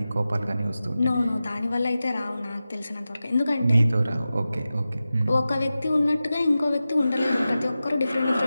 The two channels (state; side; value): inverted; both; correlation -0.94